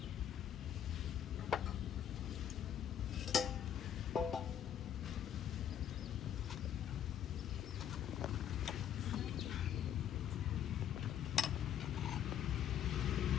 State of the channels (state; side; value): quieter; right; 9.6 dB